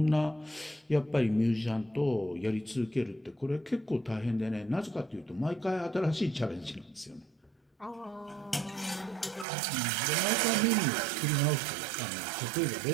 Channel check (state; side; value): drops out; left; at 9.5 s